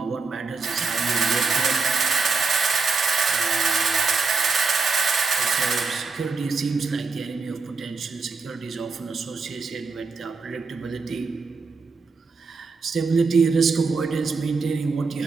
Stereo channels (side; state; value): left; quieter; 4.4 dB